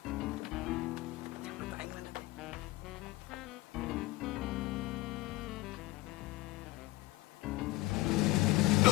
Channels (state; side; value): quieter; right; 19.4 dB